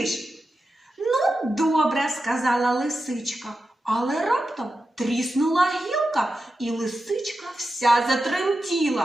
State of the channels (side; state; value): both; normal; correlation 0.90